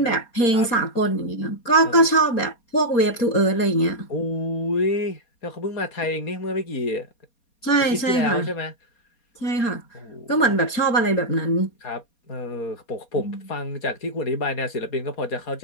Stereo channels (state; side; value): late; right; 4.2 ms